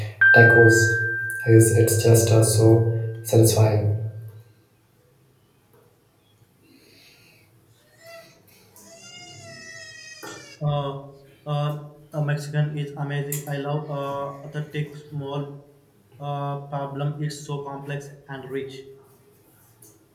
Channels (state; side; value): identical; both; correlation 1.00